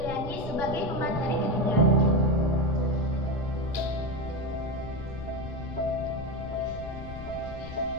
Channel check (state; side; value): noise; left; rumble, 11 dB below the sound